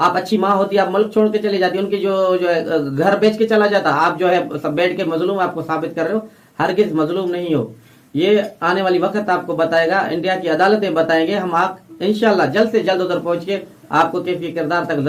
अच्छी माँ होती, आप मुल्क छोड़ के चली जाती, उनकी जो है घर बेच के चला जाता। आप जो है सब बैठ के मजलूम आपको साबित कर रहे हो, हरगिज मजलूम नहीं हो। ये आने वाली वक्त आपको बताएगा, इंडिया की अदालतें बताएंगे। हम आप इंशाल्लाह जल्द से जल्द उधर पहुंच के आपको कैफी किरदार तक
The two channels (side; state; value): both; identical; correlation 1.00